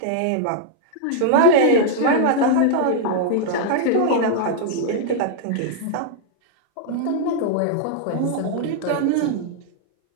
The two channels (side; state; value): both; different; correlation -0.01